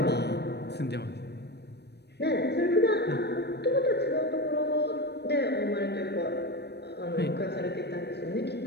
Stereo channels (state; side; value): late; right; 0.49 ms